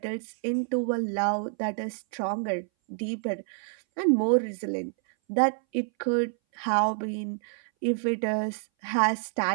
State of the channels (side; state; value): left; silent; 59 dB below the other